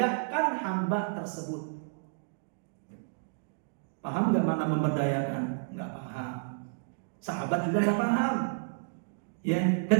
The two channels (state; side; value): silent; left; digital silence